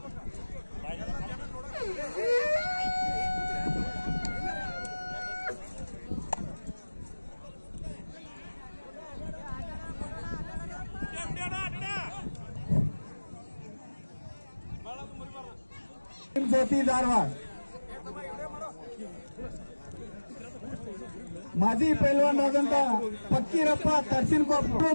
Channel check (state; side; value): inverted; both; correlation -1.00